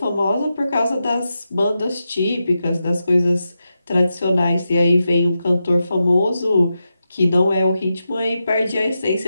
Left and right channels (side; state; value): both; inverted; correlation -0.89